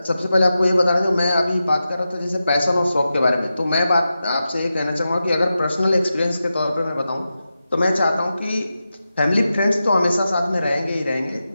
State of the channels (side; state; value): both; inverted; correlation -0.91